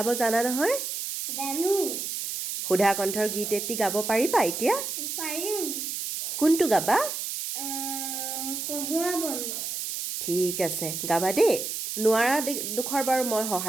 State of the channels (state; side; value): noise; right; hiss, 4 dB below the sound